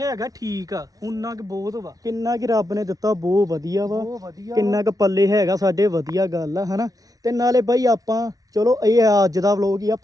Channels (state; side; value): late; left; 0.18 ms